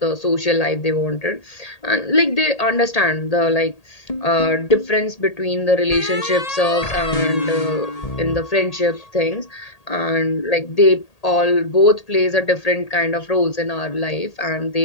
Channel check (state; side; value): late; right; 1.8 ms